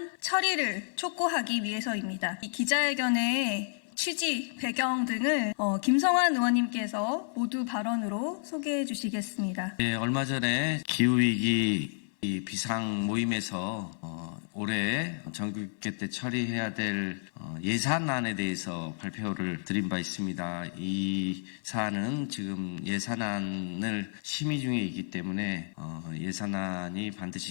처리를 촉구하기 위해서입니다. 이 기자회견의 취지, 배경 등을 김성환 의원님께서 모두 발언으로 소개해 주시겠습니다. 네, 얼마 전에 기후위기 비상 모임에서 올해 정기국회 때 처리해야 될 예산안에 대해서 발표를 드린 바 있습니다. 이 사안은 지금 예산안을 심의 중에 있기 때문에 예산안이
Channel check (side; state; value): right; silent; 57 dB below the other